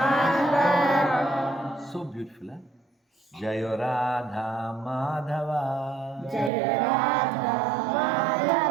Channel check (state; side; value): drops out; left; at 6.5 s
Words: So beautiful, huh? Jayo Radha Madhava. Jaya Radha